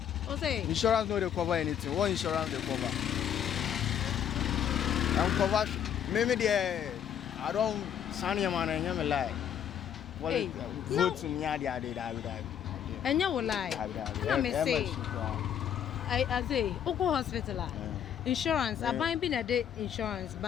say insurance no dey cover anything what insurance dey cover I'm cover me there I don't sign your man and me lie hey, vote me ade and you will lie na me say I say oko hospital insurance aban bi na de insurance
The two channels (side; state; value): right; quieter; 9.2 dB